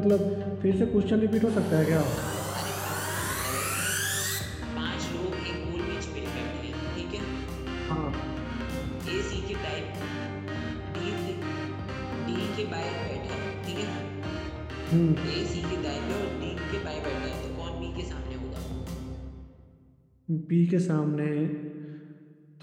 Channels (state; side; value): identical; both; correlation 1.00